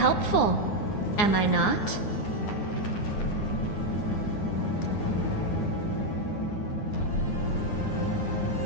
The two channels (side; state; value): right; late; 9.6 ms